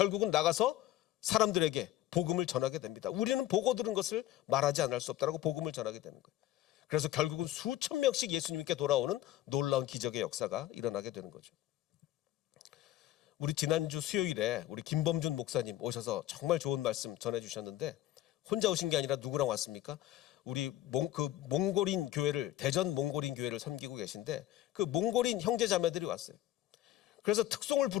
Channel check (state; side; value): quieter; right; 14.2 dB